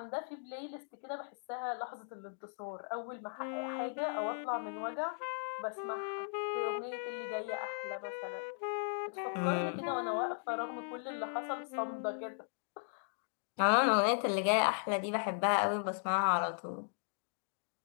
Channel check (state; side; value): silent; right; digital silence